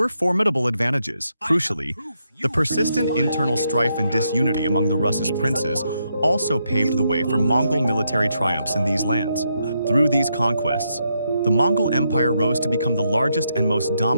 formidable advantages. Crucially, the persistent internal strife and disunity among the Russes' princes also paved the way for Mongol military triumphs in these lands. Through these conquests, the Mongol Empire rose to become the largest and most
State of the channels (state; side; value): inverted; both; correlation -0.80